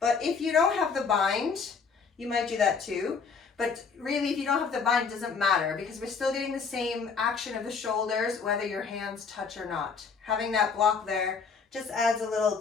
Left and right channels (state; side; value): quieter; right; 5.4 dB